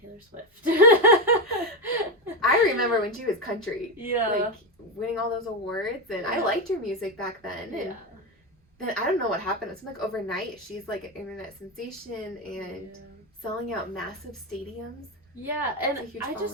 Swift. I remember when she was country. Yeah. Like winning all those awards, and I liked her music back then. And Yeah. then I don't know what happened. It's like overnight she's like an internet sensation and selling out massive stadiums. Yeah, and I following.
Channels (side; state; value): both; normal; correlation 0.12